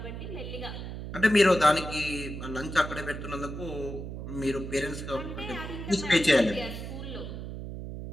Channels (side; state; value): right; noise; hum, 8 dB below the sound